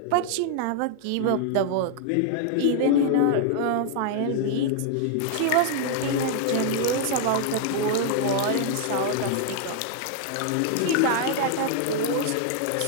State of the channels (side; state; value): both; different; correlation 0.00